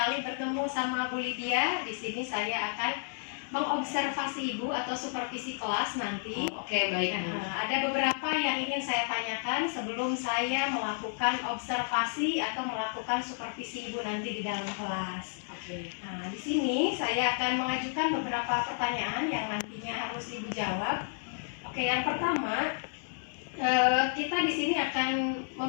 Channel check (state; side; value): silent; right; 57 dB below the other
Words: bertemu sama Bu Lydia. Di sini saya akan mengobservasi Ibu atau supervisi kelas nanti. Oke, baik Bu. Ada beberapa yang ingin saya tanyakan sebelum saya melakukan observasi atau melakukan supervisi Ibu nanti di dalam kelas. Oke. Nah, di sini saya akan mengajukan beberapa pertanyaan yang nantinya harus Ibu jawab. Oke, yang pertama, kita di sini akan